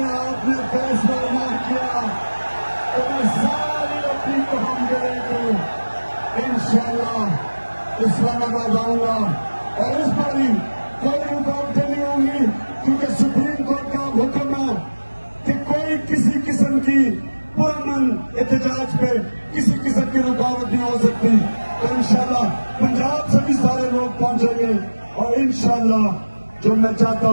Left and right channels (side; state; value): both; inverted; correlation -1.00